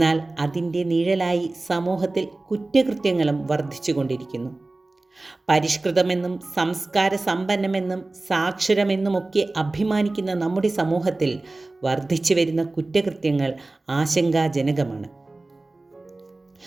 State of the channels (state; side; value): quieter; left; 3.0 dB